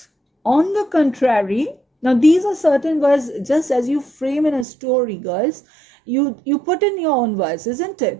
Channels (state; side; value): drops out; left; at 4.7 s